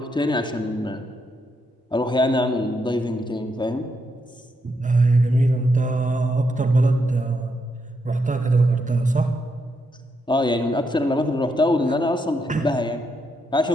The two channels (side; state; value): both; normal; correlation 0.80